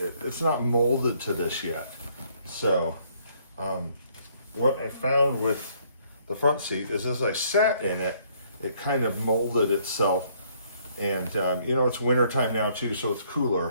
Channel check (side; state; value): both; inverted; correlation -0.66